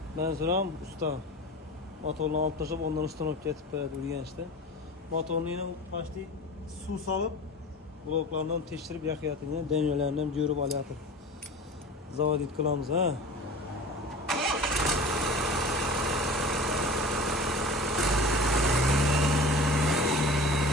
Ben soram usta. Motorunu alt taşıp ondan üstten olup getip beredi urganchda. Motorunu yine başta suv salıp bloklarından teştirip yakıyatır. Yine dengelerinden görüp alayatır. Zavodit kılamiz ha.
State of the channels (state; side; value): normal; both; correlation 0.37